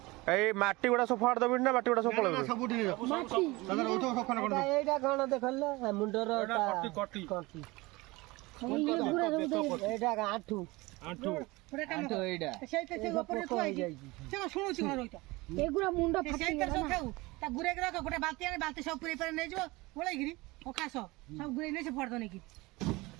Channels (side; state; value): left; quieter; 22.3 dB